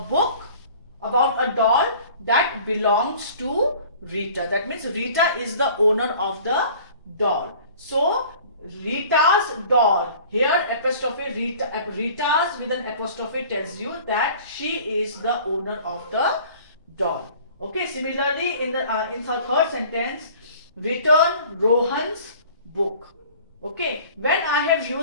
about a doll that belongs to Rita. That means Rita is the owner of the doll. So Rita's doll, here apostrophe Rita's with an apostrophe tells you that she is the owner of the doll. Okay, similarly in the third sentence, return Rohan's book. Okay, when I have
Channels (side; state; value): both; inverted; correlation -0.48